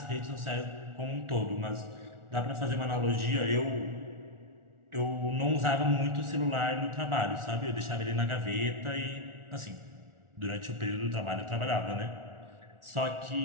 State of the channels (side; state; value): left; late; 1.4 ms